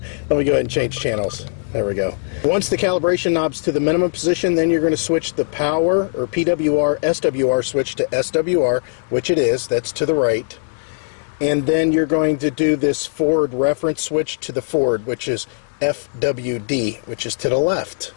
Let me go ahead and change channels. There we go. Once the calibration knob's to the minimum position, then you're going to switch the power, or PWR, SWR switch to SWR, which it is. That's to the right. And then you're going to do this forward reference switch to the forward, which is FWD, which is to the left.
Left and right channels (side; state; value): right; silent; digital silence